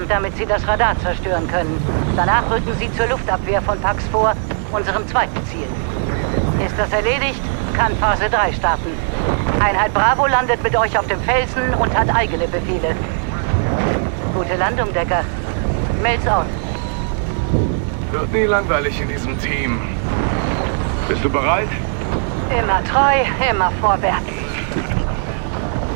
damit sie das Radar zerstören können. Danach rücken sie zur Luftabwehr von Pax vor, unserem zweiten Ziel. Ist das erledigt, kann Phase 3 starten. Einheit Bravo landet mit euch auf dem Felsen und hat eigene Befehle. Gute Landung, Decker. Mails out. Wird nie langweilig in diesem Team. Bist du bereit? Immer treu, immer vorwärts.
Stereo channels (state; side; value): silent; left; 67 dB below the other